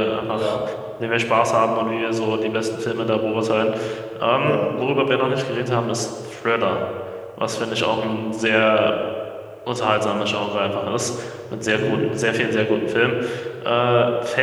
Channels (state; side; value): identical; both; correlation 1.00